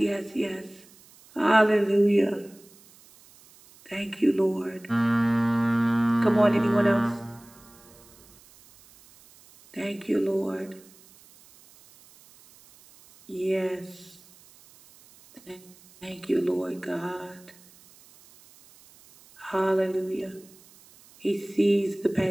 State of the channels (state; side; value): noise; right; hiss, 26 dB below the sound